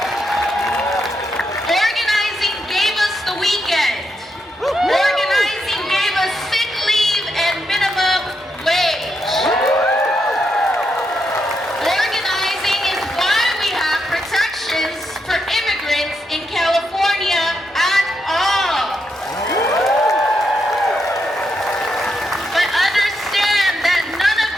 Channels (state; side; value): normal; both; correlation 0.81